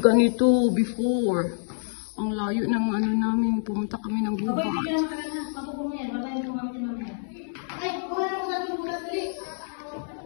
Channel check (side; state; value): right; silent; 60 dB below the other